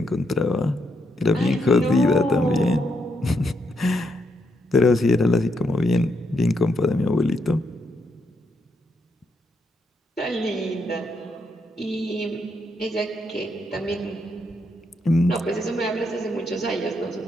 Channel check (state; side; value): normal; both; correlation 0.78